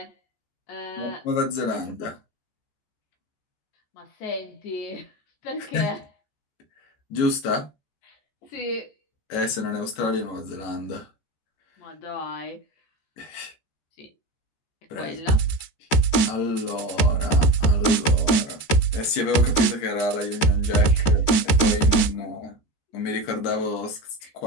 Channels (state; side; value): late; right; 13 ms